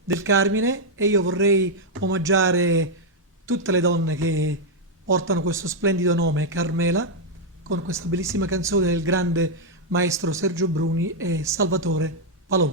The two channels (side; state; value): both; normal; correlation -0.01